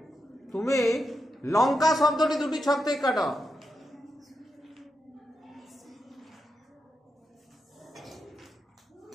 তুমি লঙ্কা শব্দটি দুটি ছক থেকে কাটো।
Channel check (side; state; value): both; normal; correlation 0.86